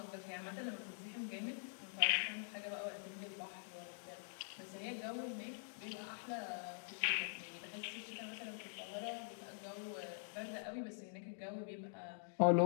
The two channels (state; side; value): silent; right; digital silence